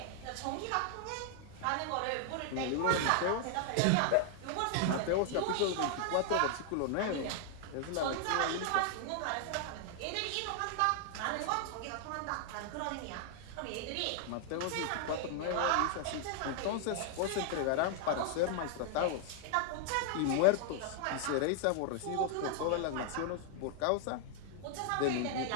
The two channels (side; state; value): both; different; correlation 0.00